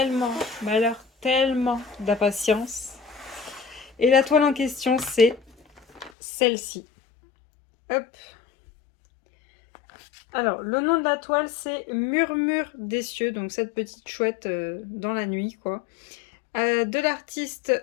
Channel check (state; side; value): drops out; right; at 6.1 s